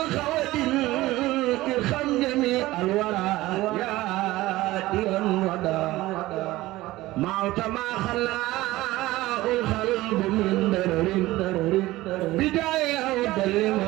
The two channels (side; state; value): left; quieter; 17.8 dB